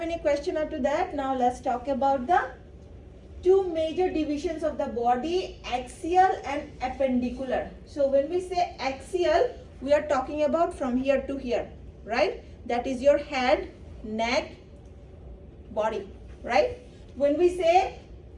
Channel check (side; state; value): both; identical; correlation 1.00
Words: any question up to that, now let's talk about the two major divisions of the body, axial and appendicular. So when we say axial, we are talking about from here to here, right? That is your head, neck, body, right? When we say